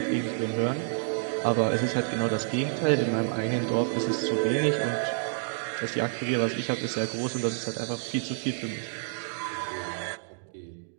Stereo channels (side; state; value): left; silent; digital silence